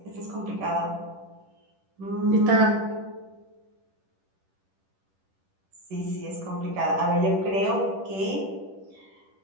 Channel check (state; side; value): late; left; 10 ms